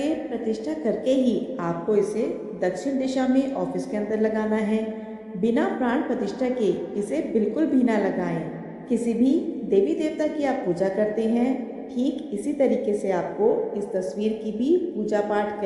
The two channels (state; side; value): identical; both; correlation 1.00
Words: प्रतिष्ठा करके ही आपको इसे दक्षिण दिशा में ऑफिस के अंदर लगाना है। बिना प्राण प्रतिष्ठा के इसे बिल्कुल भी ना लगाएं। किसी भी देवी देवता की आप पूजा करते हैं, ठीक इसी तरीके से आपको इस तस्वीर की भी पूजा पाठ